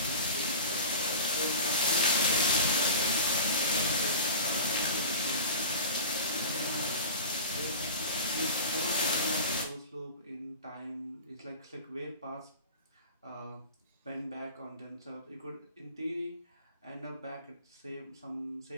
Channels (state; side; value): inverted; both; correlation -0.34